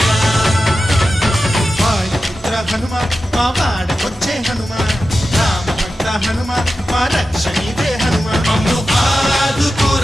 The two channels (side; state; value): both; normal; correlation 0.92